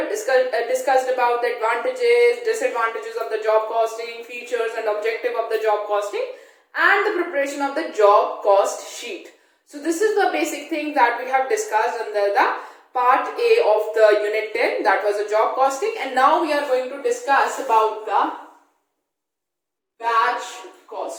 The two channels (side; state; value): both; identical; correlation 1.00